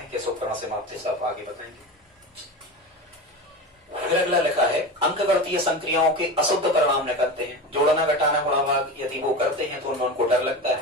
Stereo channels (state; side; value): normal; both; correlation 0.26